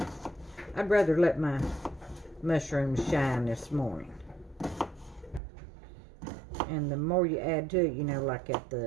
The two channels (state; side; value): drops out; left; at 5.4 s